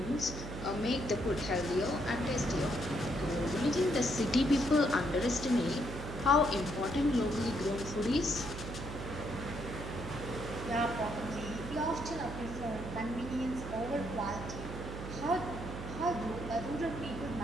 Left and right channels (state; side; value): noise; right; hum, 8 dB below the sound